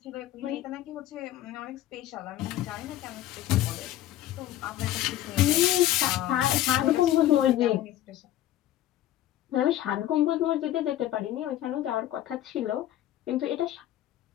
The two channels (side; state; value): right; quieter; 13.3 dB